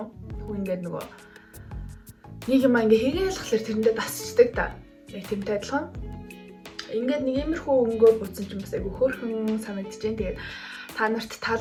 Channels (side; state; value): both; identical; correlation 1.00